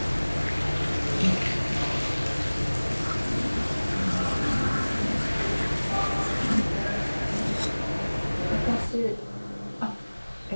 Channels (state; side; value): inverted; both; correlation -1.00